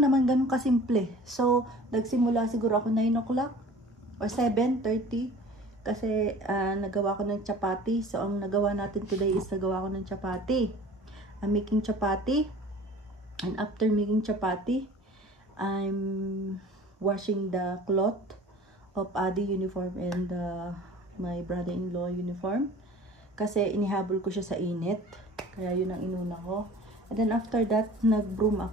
naman, ganun kasimple. So, nagsimula siguro ako 9 o'clock or 7:30 kasi nagawa ko ng chapati. So, ang nagawa natin today is nagawa ko ng chapati. I'm making chapati. And after making chapati, I'm washing the cloth of Adi uniform and my brother-in-law uniform. Kasi inihabol ko siya sa init. Kaya yun ang inuna ko. And then after that, nag-broom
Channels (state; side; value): normal; both; correlation 0.45